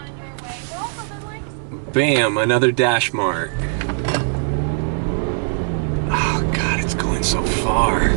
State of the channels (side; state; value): left; silent; 66 dB below the other